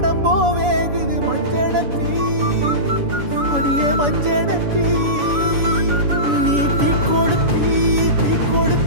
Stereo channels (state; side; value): late; left; 7.0 ms